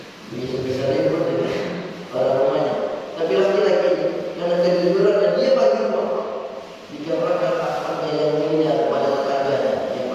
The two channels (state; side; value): identical; both; correlation 1.00